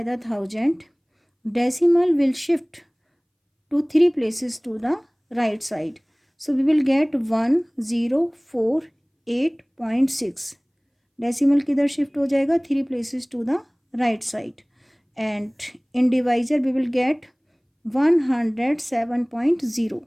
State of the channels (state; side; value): identical; both; correlation 1.00